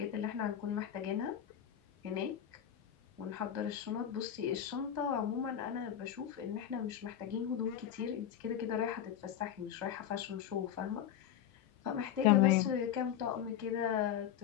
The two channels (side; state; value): right; quieter; 9.9 dB